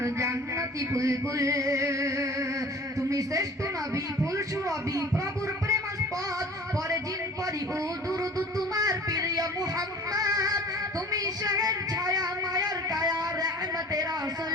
জান্নাতি বুলবুল তুমি শ্রেষ্ঠ নবী ফুল সুরবি প্রভুর প্রেমাস্পদ পরে জিন পরি ও দুরুদ তোমার প্রিয় মুহাম্মদ তুমি শহর ছায়া মায়ার কায়া রহমতে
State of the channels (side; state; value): both; normal; correlation 0.45